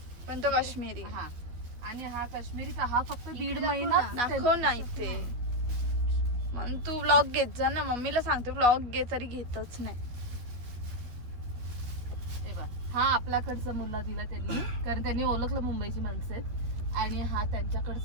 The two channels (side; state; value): left; late; 12 ms